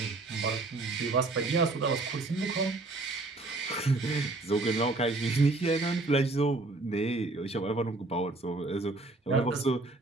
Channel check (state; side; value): quieter; left; 3.2 dB